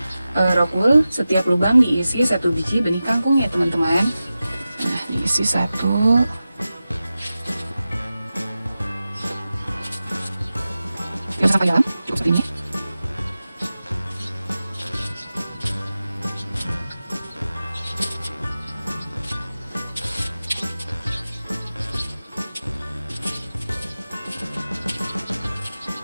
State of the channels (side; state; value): both; inverted; correlation -0.94